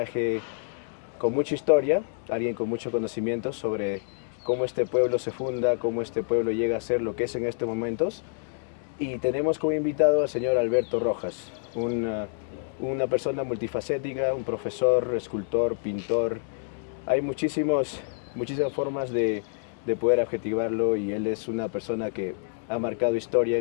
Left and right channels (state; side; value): silent; right; digital silence